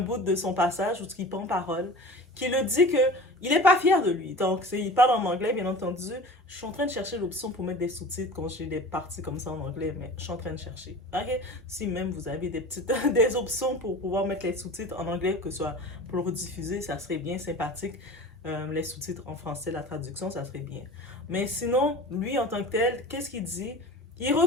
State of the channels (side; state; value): both; normal; correlation 0.37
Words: de son passage où il prend parole, qui le dit que il n'est pas fier de lui. Donc, il parle en anglais, bien entendu. Je suis en train de chercher l'option pour mettre des sous-titres quand j'ai des parties comme ça en anglais, mais je suis en train de chercher. Ok? Si même vous avez des options pour pouvoir mettre les sous-titres en anglais, que ce soit pour le rediffuser, ça serait bien sympathique. Les sous-titres en français, la traduction, ça serait bien. Mais sinon, lui, en tant que tel, qu'est-ce qu'il dit? Il